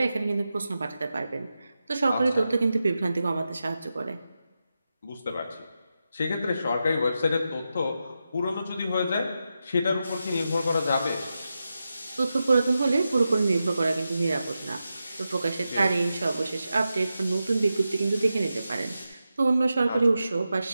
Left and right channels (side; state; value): both; inverted; correlation -0.90